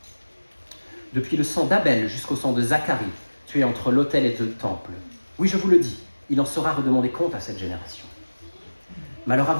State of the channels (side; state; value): both; inverted; correlation -1.00